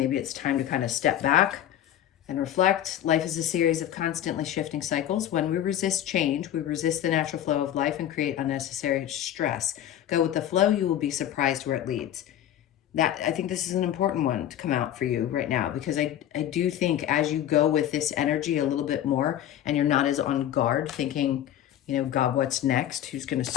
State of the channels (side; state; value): right; quieter; 11.4 dB